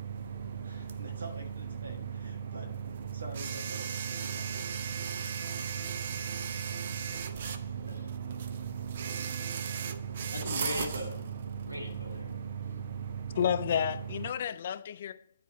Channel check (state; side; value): inverted; both; correlation -0.64